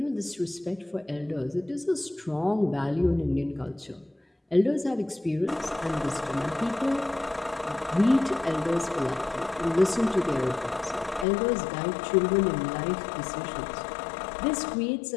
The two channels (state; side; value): drops out; right; at 11.2 s